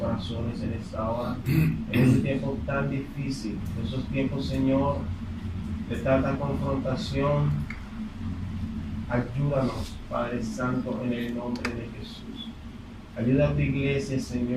en esta hora, en este tiempo tan difícil, en esos tiempos, Señor, de tanta confrontación. Ayúdanos, Padre Santo, en el nombre de Jesús. Ayuda a tu iglesia,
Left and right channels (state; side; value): identical; both; correlation 1.00